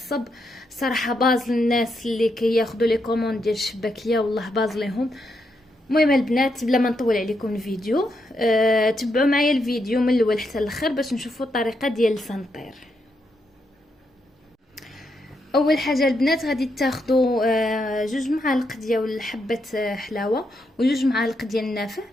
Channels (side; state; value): both; normal; correlation 0.81